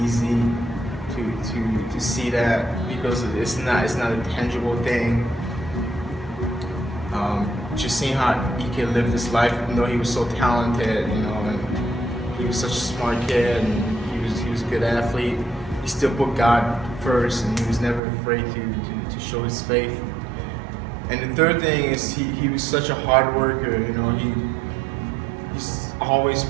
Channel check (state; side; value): drops out; left; at 18.0 s